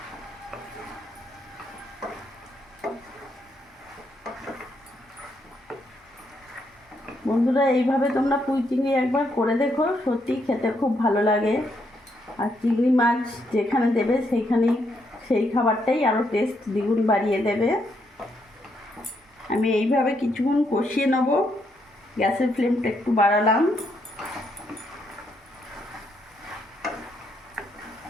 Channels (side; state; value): both; normal; correlation 0.76